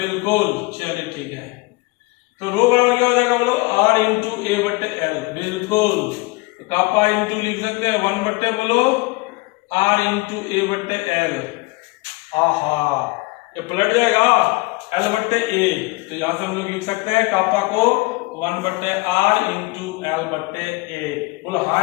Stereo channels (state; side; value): quieter; right; 24.0 dB